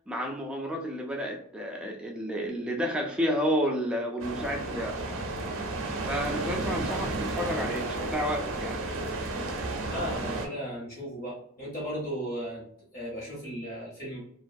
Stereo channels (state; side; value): normal; both; correlation 0.39